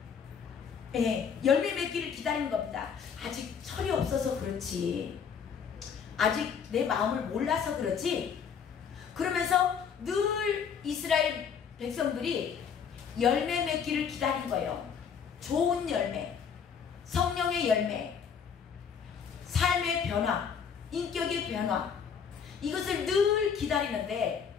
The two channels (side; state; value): right; quieter; 7.0 dB